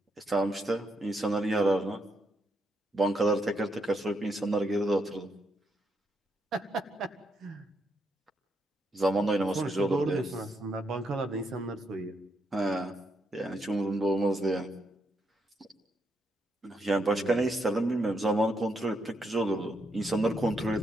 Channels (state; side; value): normal; both; correlation 0.79